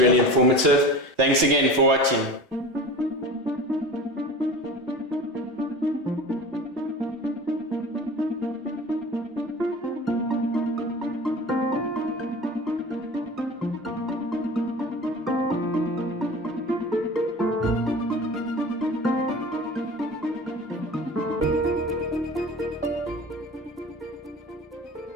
informative. Thanks again for watching.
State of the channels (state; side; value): normal; both; correlation 0.35